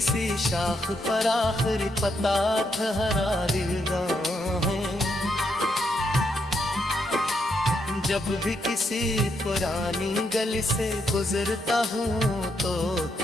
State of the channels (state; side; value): normal; both; correlation 0.79